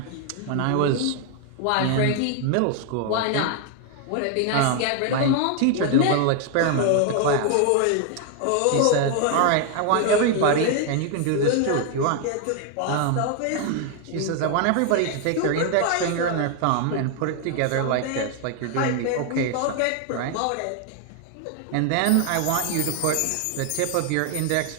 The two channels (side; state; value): both; different; correlation 0.00